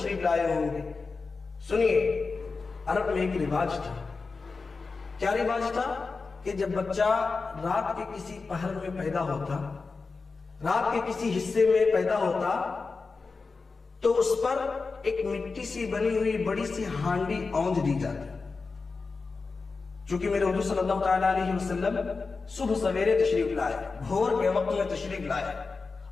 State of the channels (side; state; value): right; quieter; 4.3 dB